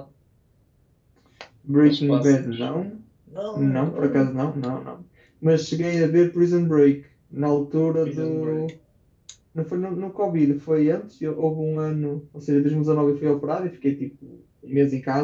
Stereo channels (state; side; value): identical; both; correlation 1.00